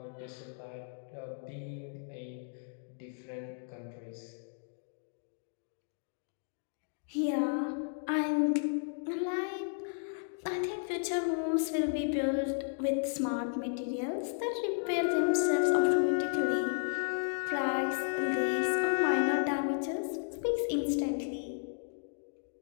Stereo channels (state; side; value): silent; right; digital silence